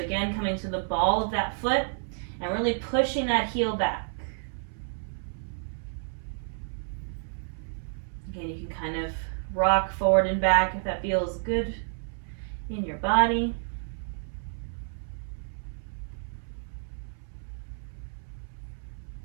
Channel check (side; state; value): left; silent; 58 dB below the other